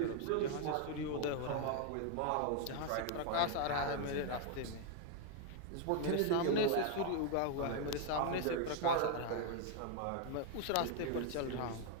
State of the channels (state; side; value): different; both; correlation 0.00